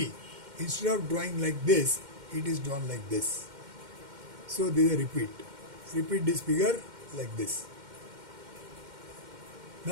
instead of drawing like this, it is drawn like this. So there is a repeat. Repeat this figure like this.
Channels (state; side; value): late; left; 2.1 ms